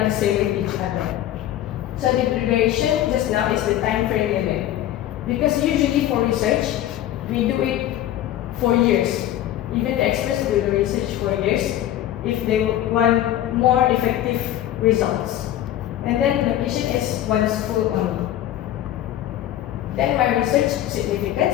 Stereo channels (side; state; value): right; quieter; 12.8 dB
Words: the same with each other. So the duration just now is the time frame limit, because usually for research, we do it for years. Even the experts do the research for years if they want more effective results. And then location is one school only. Then my research